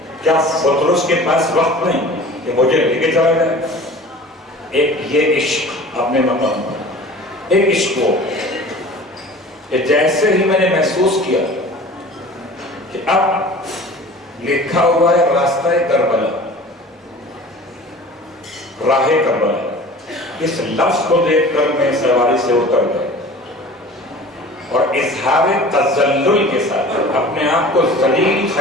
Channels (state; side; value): normal; both; correlation 0.41